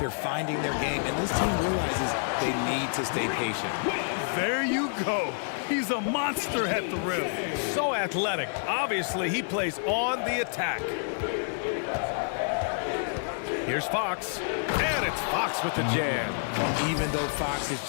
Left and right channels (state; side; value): silent; right; digital silence